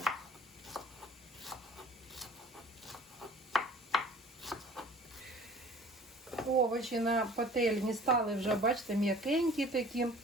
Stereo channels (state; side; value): normal; both; correlation 0.47